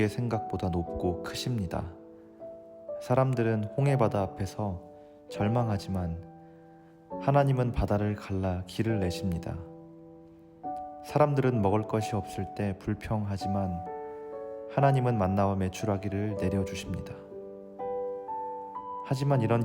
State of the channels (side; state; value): both; identical; correlation 1.00